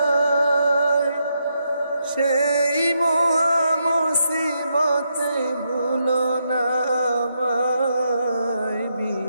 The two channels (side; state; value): both; inverted; correlation -0.81